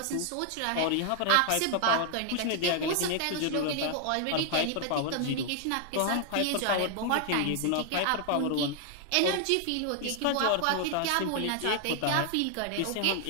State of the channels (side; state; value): both; different; correlation 0.00